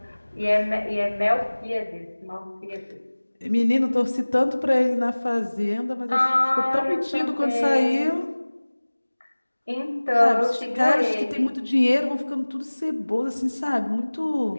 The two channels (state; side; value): inverted; both; correlation -1.00